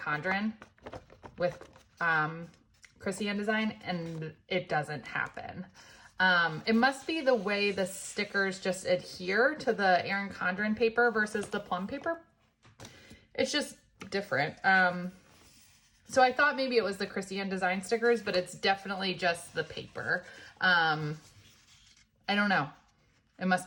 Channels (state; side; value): identical; both; correlation 1.00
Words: with Chrissy Ann Design, and it doesn't happen. It must be the way the stickers just adhere to the Erin Condren paper versus the Plum paper. It's just different. So I thought maybe it was the Chrissy Ann Design stickers, but it's definitely just the paper. I don't know. It must